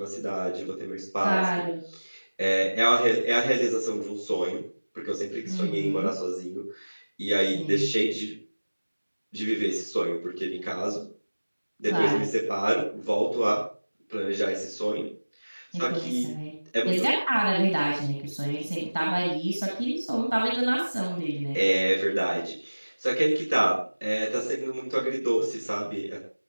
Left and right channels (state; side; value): inverted; both; correlation -1.00